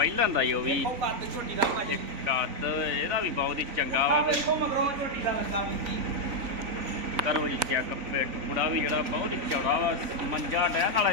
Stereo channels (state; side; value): late; left; 3.9 ms